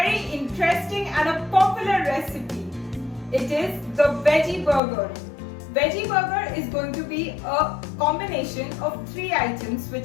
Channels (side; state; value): right; drops out; at 4.8 s